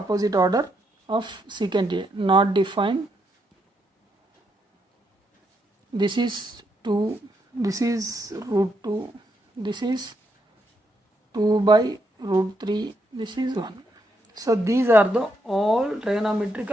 order of secant A. Not defined. This is 2. This is root 2. This is 2 by root 3. This is 1. So these are the all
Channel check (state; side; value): normal; both; correlation 0.78